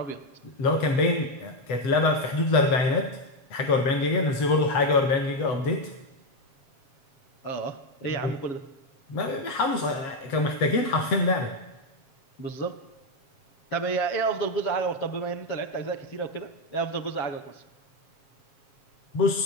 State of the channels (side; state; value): right; late; 7.4 ms